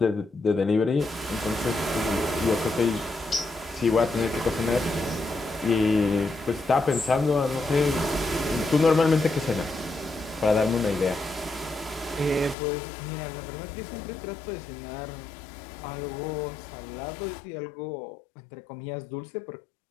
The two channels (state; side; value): drops out; right; at 12.6 s